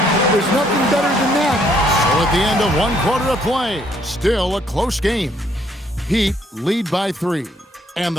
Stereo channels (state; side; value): normal; both; correlation 0.68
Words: there's nothing better than that. So at the end of 1 quarter of play, still a close game. Heat lead by 3. And